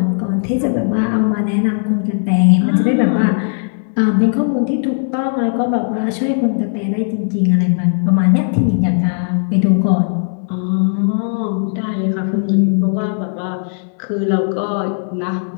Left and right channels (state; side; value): silent; right; digital silence